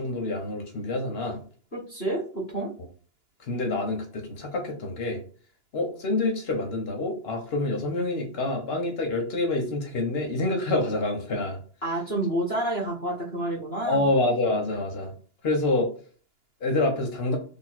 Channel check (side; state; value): right; late; 2.9 ms